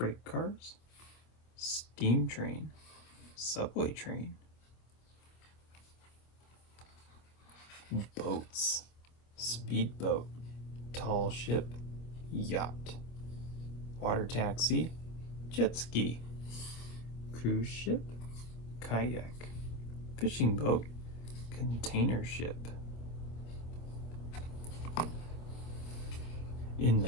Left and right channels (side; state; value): right; late; 25 ms